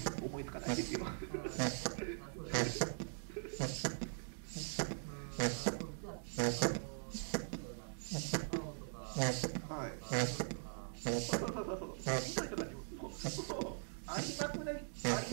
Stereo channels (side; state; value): left; silent; digital silence